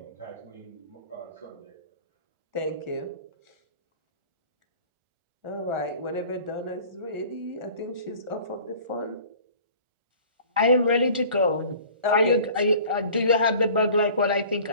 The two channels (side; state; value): left; late; 1.4 ms